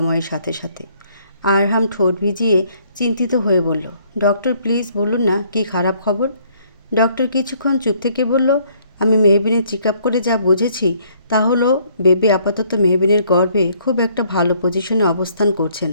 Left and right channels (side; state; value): both; inverted; correlation -0.64